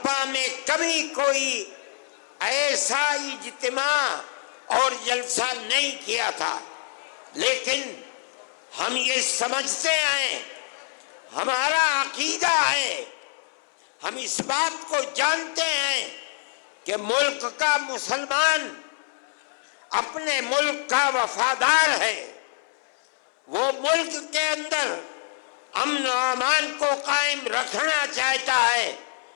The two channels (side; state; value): right; silent; 61 dB below the other